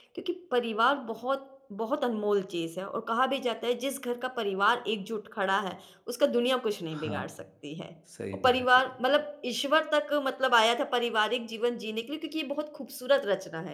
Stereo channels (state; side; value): identical; both; correlation 1.00